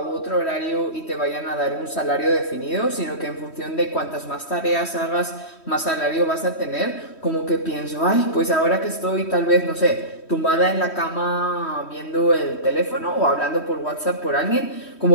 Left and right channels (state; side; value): late; right; 3.1 ms